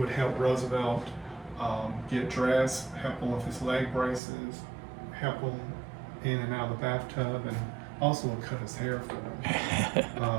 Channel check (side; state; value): left; drops out; at 4.2 s